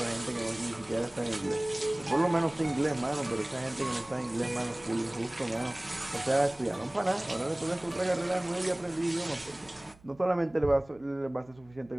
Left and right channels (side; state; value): right; noise; hum, 26 dB below the sound